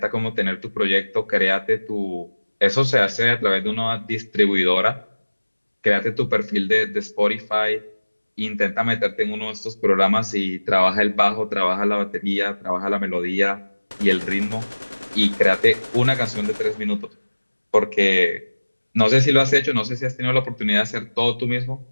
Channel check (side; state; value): both; inverted; correlation -1.00